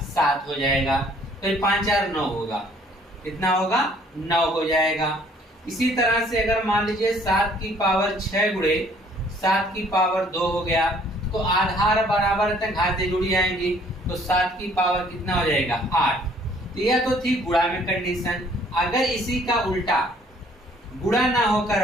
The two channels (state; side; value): normal; both; correlation 0.59